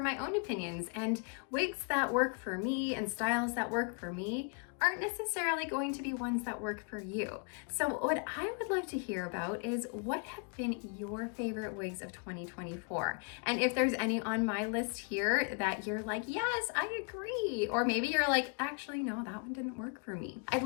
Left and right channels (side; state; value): right; quieter; 37.5 dB